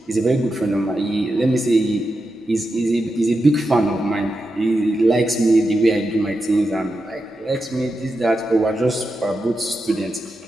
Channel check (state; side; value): normal; both; correlation 0.88